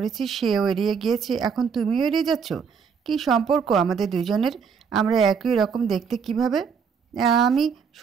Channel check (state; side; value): quieter; left; 6.3 dB